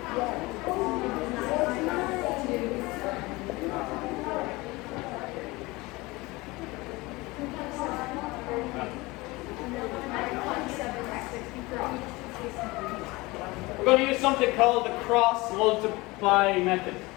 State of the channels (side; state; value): right; quieter; 22.3 dB